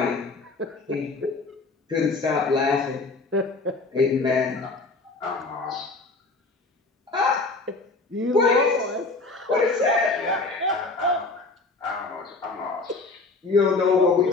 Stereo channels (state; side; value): quieter; right; 3.6 dB